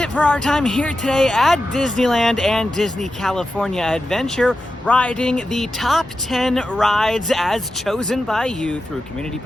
for our time here today at Disneyland and Disney California Adventure, riding the top 10 rides as chosen by you through Community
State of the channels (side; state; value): both; normal; correlation 0.91